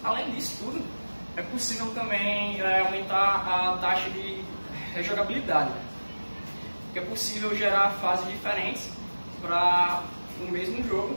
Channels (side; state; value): both; inverted; correlation -1.00